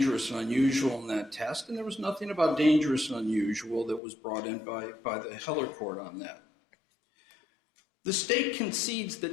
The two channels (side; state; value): right; drops out; at 4.0 s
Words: and unusual in that test, and there was nothing about dangerous and unusual that was brought in by the Heller court on that. The state concedes